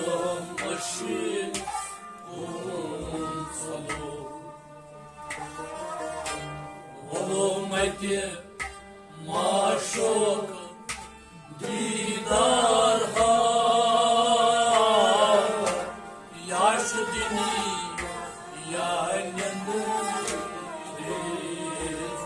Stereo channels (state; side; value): identical; both; correlation 1.00